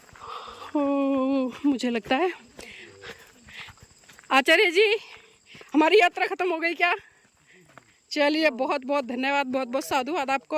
ओ, मुझे लगता है आचार्य जी हमारी यात्रा खत्म हो गई क्या? चलिए बहुत बहुत धन्यवाद, बहुत बहुत साधुवाद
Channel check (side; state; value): both; identical; correlation 1.00